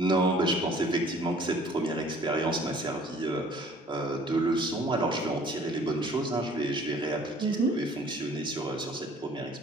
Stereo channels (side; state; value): both; normal; correlation 0.54